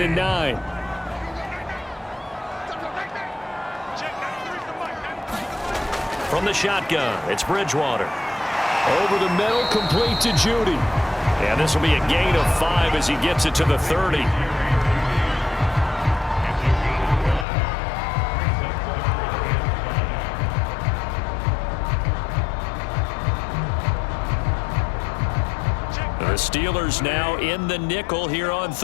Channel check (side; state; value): right; drops out; at 17.4 s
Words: and 9. From the shotgun, it's Bridgewater. Over the middle, complete to Judy. And this will be a gain of 5 as he gets it to the 30. The Steelers now in the nickel here on